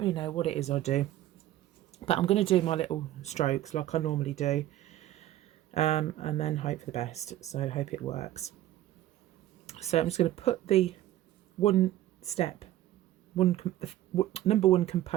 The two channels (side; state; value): left; quieter; 13.8 dB